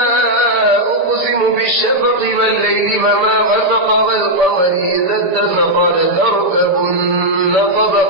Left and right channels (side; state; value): left; late; 6.9 ms